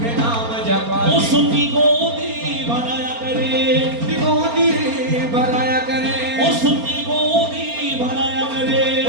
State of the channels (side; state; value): left; late; 4.3 ms